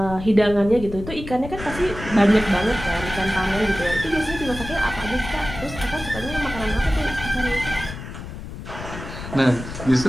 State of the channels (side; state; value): left; noise; rumble, 11 dB below the sound